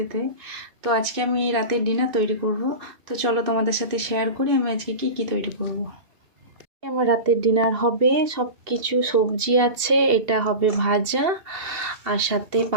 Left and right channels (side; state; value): left; late; 2.7 ms